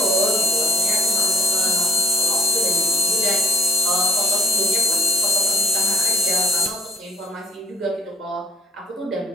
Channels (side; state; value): both; normal; correlation 0.69